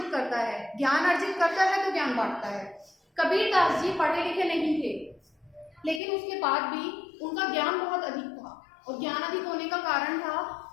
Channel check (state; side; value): drops out; right; at 6.0 s